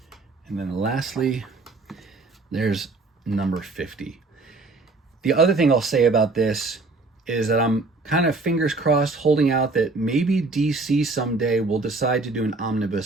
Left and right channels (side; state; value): left; quieter; 3.6 dB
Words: and then lastly, there's number 50. The other thing I'll say about this is that I'm kind of fingers crossed holding out that maybe DC someday will decide to do an